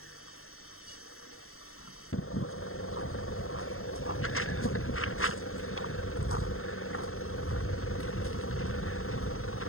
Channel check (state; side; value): late; right; 0.62 ms